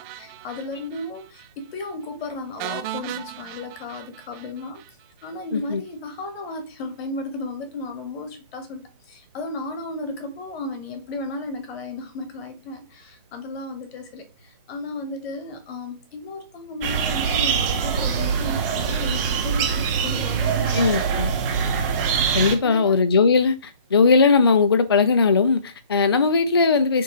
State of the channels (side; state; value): both; inverted; correlation -0.49